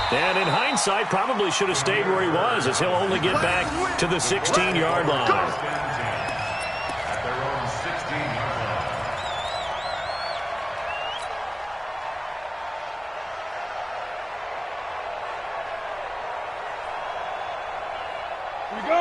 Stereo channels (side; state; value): both; identical; correlation 1.00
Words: And in hindsight, probably should have stayed where he was as he'll only get back to the 16-yard line.